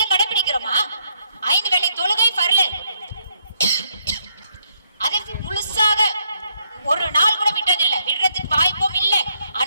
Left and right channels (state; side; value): inverted; both; correlation -0.72